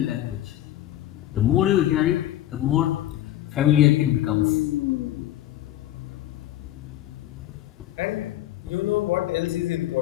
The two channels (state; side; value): quieter; right; 13.5 dB